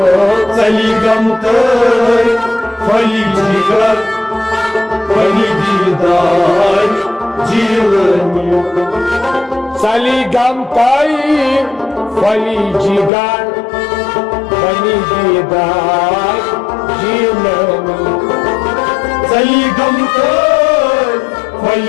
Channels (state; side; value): drops out; right; at 13.1 s